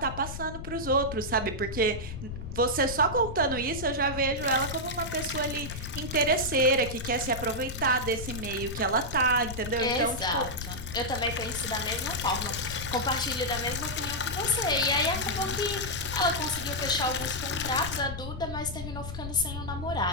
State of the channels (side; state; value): left; noise; rumble, 8 dB below the sound